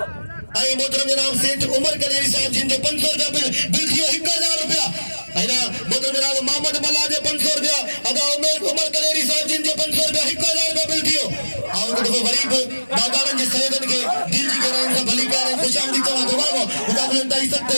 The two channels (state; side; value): inverted; both; correlation -1.00